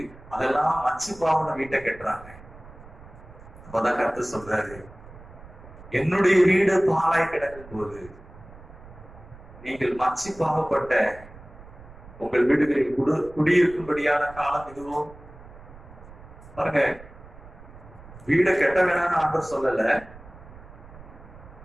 அதெல்லாம் மச்சு பாவன வீட்டை கட்டுறாங்க. அப்பதான் கர்த்தர் சொல்றாரு, என்னுடைய வீடு பாழாய் கிடக்கும் போது நீங்கள் மச்சி பாவப்பட்ட உங்கள் வீடுகளில் குடியிருக்கும்படியான காலம் இதுவும். பாருங்க, வீடை கட்ட வேணாம்னு ஆண்டவர் சொல்லல.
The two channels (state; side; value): noise; right; rumble, 19 dB below the sound